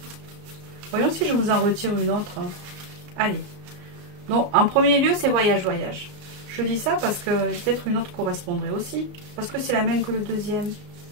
Voyons si je vous en retire une autre. Allez. Donc, en premier lieu, c'est voyage. Je dis ça parce que peut-être une autre correspondrait aussi. Parce que c'est la même que le deuxième.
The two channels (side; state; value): left; late; 34 ms